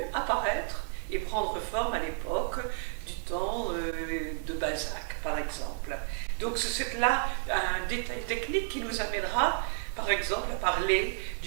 apparaître et prendre forme à l'époque du temps de Balzac par exemple. Donc c'est là un détail technique qui nous amènera par exemple à parler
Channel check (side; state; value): left; silent; digital silence